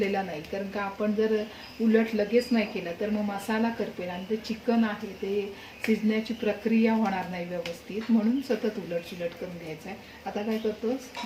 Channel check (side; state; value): both; identical; correlation 1.00